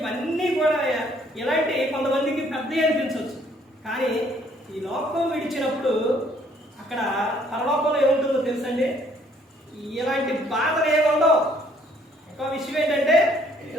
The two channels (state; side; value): normal; both; correlation 0.63